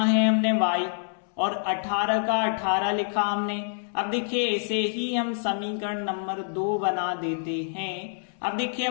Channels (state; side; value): silent; right; 60 dB below the other